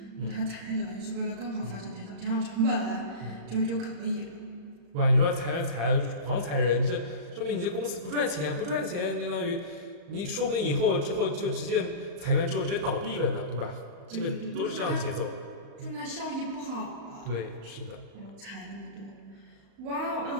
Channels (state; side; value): late; left; 35 ms